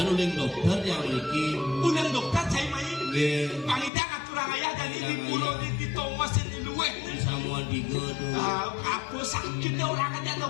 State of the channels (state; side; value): drops out; right; at 3.9 s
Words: uling dokter yang niki Ulang dokter cai main. nggih Pangita ngaturang ayah dari di Idang pulau ayah. di Thomas di luar. gue. Samuan 3 tuh. Apa sakitnya orang aja